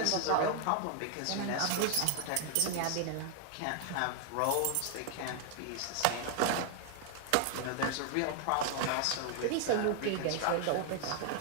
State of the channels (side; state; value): both; different; correlation 0.00